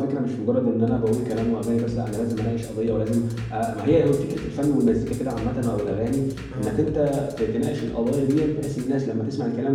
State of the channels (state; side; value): identical; both; correlation 1.00